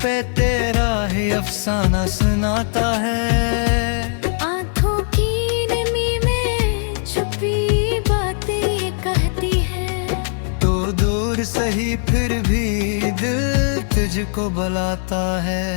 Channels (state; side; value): silent; right; digital silence